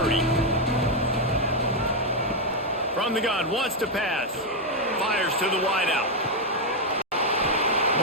From the gun, wants to pass. Fires to the wideout.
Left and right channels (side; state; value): both; normal; correlation 0.02